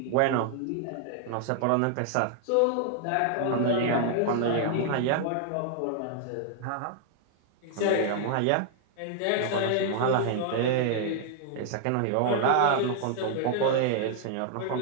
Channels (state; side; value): different; both; correlation 0.00